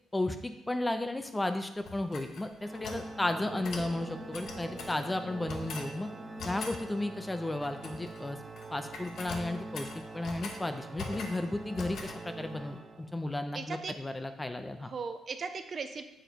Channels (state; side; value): normal; both; correlation 0.93